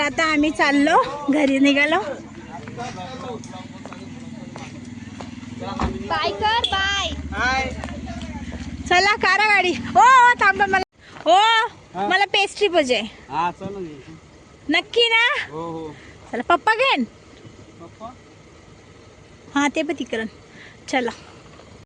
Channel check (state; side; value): identical; both; correlation 1.00